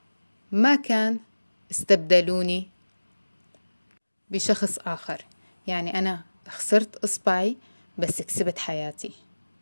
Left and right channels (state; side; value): inverted; both; correlation -1.00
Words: ما كان استبدلوني بشخص آخر، يعني أنا خسرت إصبعي بس كسبت حياتي.